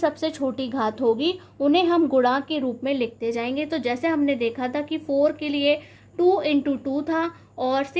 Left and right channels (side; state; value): both; identical; correlation 1.00